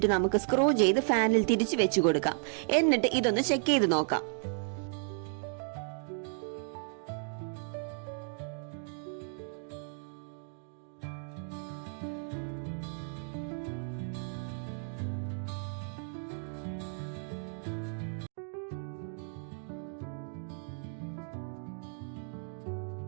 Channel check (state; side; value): silent; left; 55 dB below the other